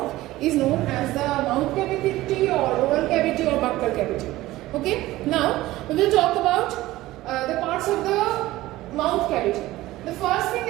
is known as the mouth cavity or oral cavity or buccal cavity. Okay. Now we will talk about the parts of the mouth cavity. The first thing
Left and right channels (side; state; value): left; quieter; 17.0 dB